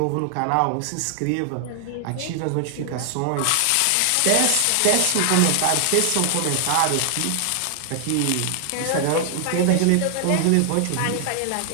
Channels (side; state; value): both; different; correlation 0.00